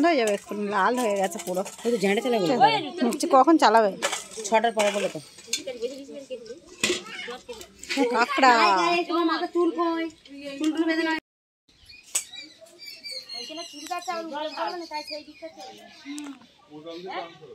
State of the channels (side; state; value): both; identical; correlation 1.00